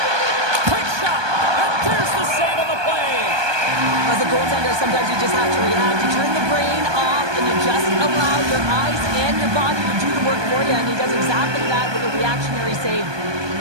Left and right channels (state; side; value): late; left; 1.2 ms